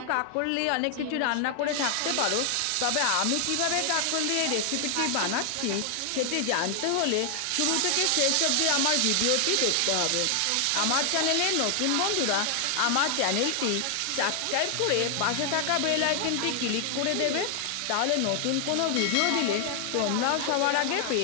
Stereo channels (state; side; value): different; both; correlation 0.00